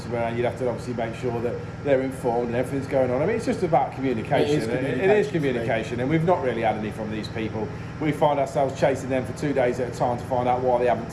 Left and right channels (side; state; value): both; identical; correlation 1.00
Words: and you'd have to obviously make sure that they're informed and everything's going on. I mean, it's just about communication. It is communication, and we've not really had any from these people. We find ourselves chasing them for 2 days at a time to find out why they haven't